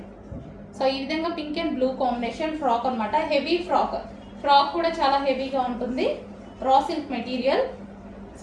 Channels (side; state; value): both; identical; correlation 1.00